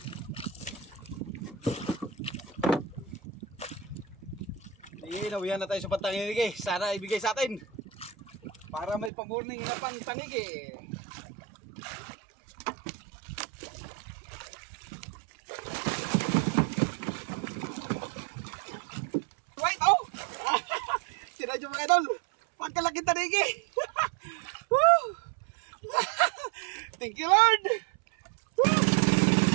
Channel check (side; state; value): left; drops out; at 9.1 s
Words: Nawihan na tayo sa pantanigi. Sana ibigay sa atin para may pamorning na pantanigi. Right, oh! Sinadyo mga idol, pagkalaki tanigi. Thank you Lord.